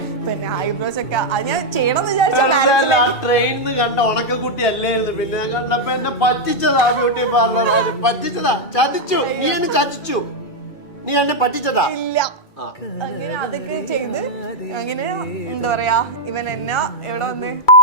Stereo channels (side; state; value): right; late; 2.3 ms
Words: പിന്നെ ഐബ്രോസ് ഒക്കെ അത് ഞാൻ ചെയ്യണമെന്ന് വിചാരിച്ചു. ട്രെയിനിന്ന് കണ്ട ഉണക്കക്കുട്ടി അല്ലായിരുന്നു. പിന്നെ കണ്ടപ്പോ എന്നെ പറ്റിച്ചതാ ബ്യൂട്ടി പാർലർ, പറ്റിച്ചതാ, ചതിച്ചു. നീ എന്നെ പറ്റിച്ചതാ. ഇല്ല, അങ്ങനെ അതൊക്കെ ചെയ്ത് അങ്ങനെ എന്താ പറയാ, ഇവൻ എന്നെ എവിടെ വന്ന്